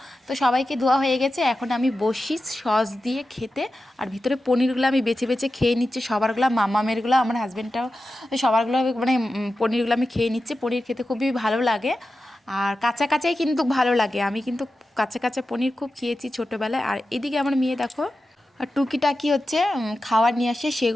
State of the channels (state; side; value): normal; both; correlation 0.92